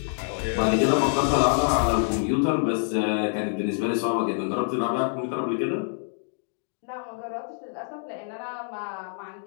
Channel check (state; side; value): silent; right; 61 dB below the other